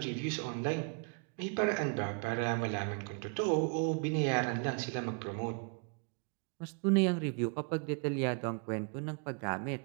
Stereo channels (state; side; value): quieter; left; 38.4 dB